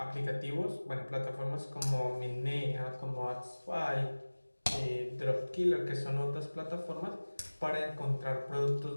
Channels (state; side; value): inverted; both; correlation -1.00